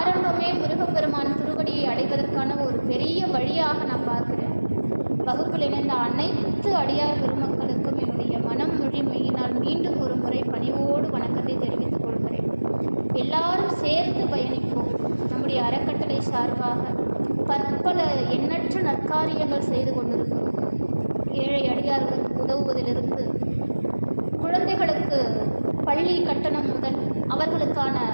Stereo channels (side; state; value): both; inverted; correlation -1.00